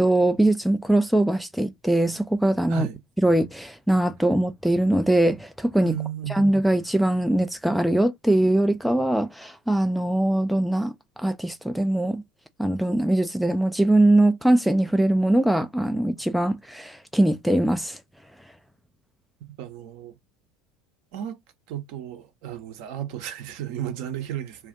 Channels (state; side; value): normal; both; correlation 0.95